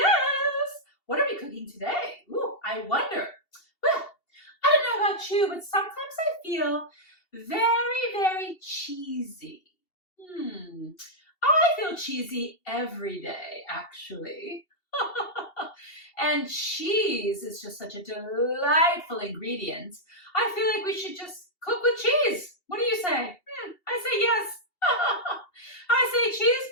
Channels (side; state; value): right; late; 2.7 ms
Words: What are we cooking today? Ooh, I wonder. Well, I don't know about you, but sometimes I feel very, very cheesy. I feel cheesy every day, actually. And cheese is just such a delightful ingredient. I feel like we should just cook with cheese. What do you say? I say yes. I say cheese,